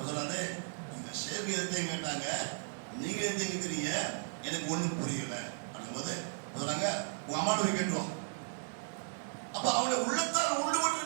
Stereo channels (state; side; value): silent; left; digital silence